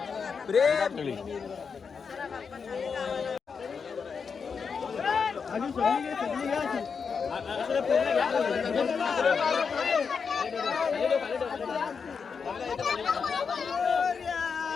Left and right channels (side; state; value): right; quieter; 5.8 dB